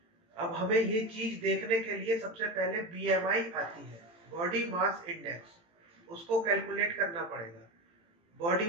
अब हमें ये चीज देखने के लिए सबसे पहले बीएमआई आती है, बॉडी मास इंडेक्स, उसको कैलकुलेट करना पड़ेगा। बॉडी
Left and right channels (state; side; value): late; left; 18 ms